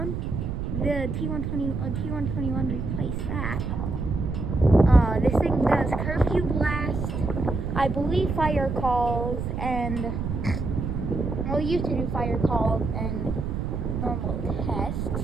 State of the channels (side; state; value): right; noise; rumble, 3 dB below the sound